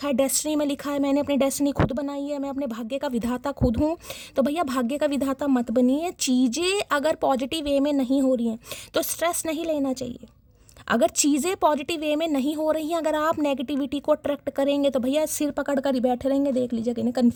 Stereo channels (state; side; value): identical; both; correlation 1.00